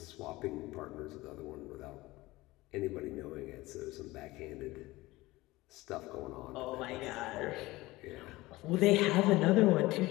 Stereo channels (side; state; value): right; quieter; 19.6 dB